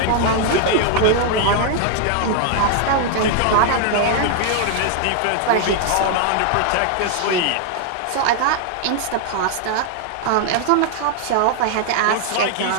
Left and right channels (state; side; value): different; both; correlation 0.00